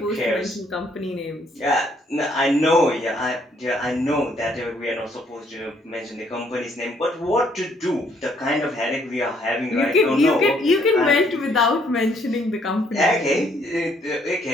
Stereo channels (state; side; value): normal; both; correlation 0.67